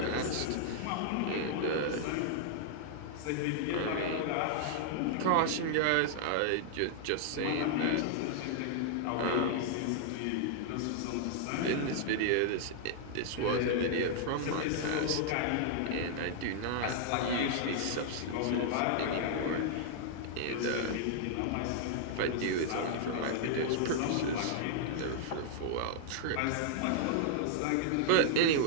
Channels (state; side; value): different; both; correlation -0.01